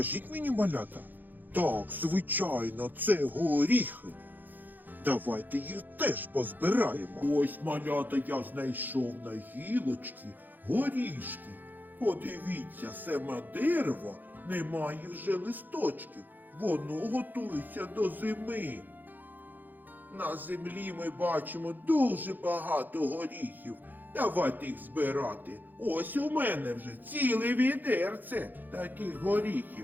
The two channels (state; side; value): late; left; 0.086 ms